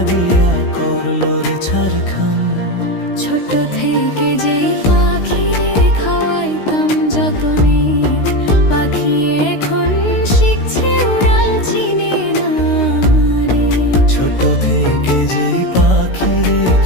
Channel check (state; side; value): late; right; 16 ms